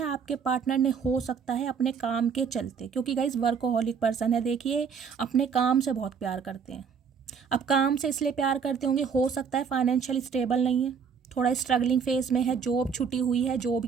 आपके पार्टनर ने हो सकता है अपने काम के चलते, क्योंकि गाइस वर्कोहोलिक पर्सन है। देखिए, अपने काम से बहुत प्यार करते हैं। अब काम से इसलिए प्यार करते होंगे, हो सकता है फाइनेंशियल स्टेबल नहीं है, थोड़ा स्ट्रगलिंग फेज में है, जॉब छुट्टी हुई है, जॉब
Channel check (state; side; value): quieter; left; 6.4 dB